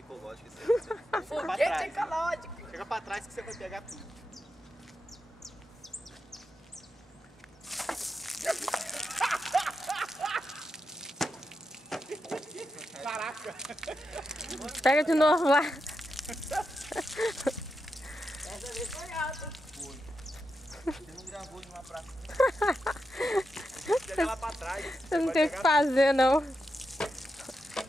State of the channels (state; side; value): normal; both; correlation 0.87